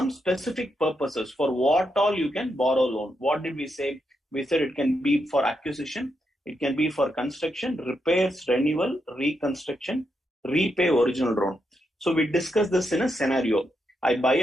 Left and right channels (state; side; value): normal; both; correlation 0.83